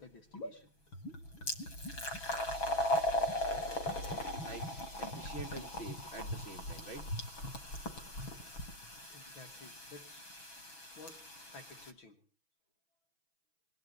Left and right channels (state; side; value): late; right; 6.1 ms